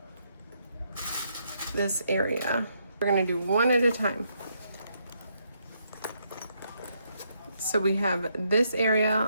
this area. We're gonna do one at a time. So we have this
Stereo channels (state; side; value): inverted; both; correlation -0.76